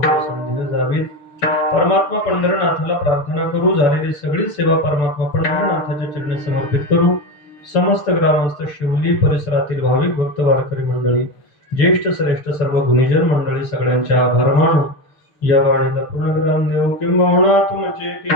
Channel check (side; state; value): right; late; 6.5 ms